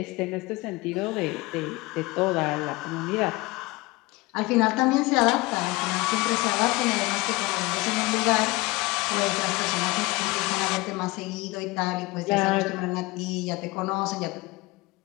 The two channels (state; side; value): quieter; right; 22.6 dB